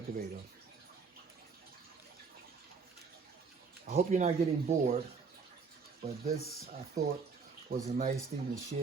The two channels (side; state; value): left; quieter; 5.1 dB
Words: I hope you're not getting bored, but this I thought was a nice thing to